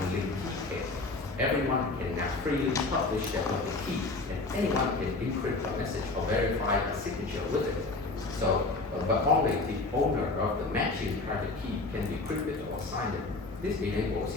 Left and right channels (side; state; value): right; quieter; 3.4 dB